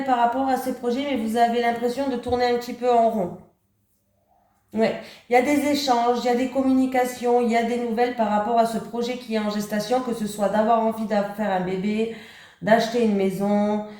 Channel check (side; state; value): both; identical; correlation 1.00